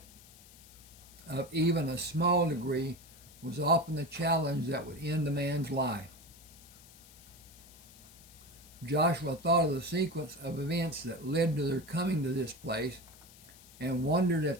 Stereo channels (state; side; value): noise; left; hiss, 21 dB below the sound